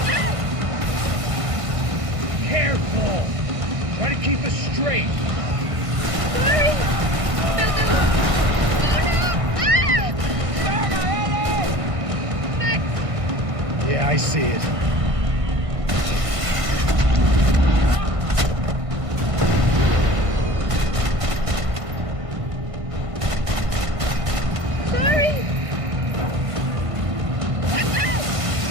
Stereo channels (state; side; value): late; left; 1.6 ms